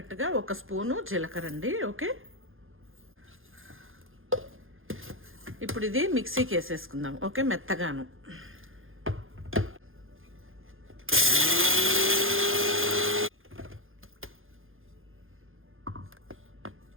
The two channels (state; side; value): late; left; 0.59 ms